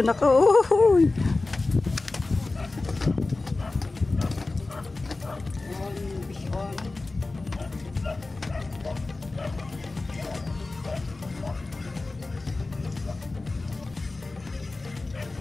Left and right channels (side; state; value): right; quieter; 3.3 dB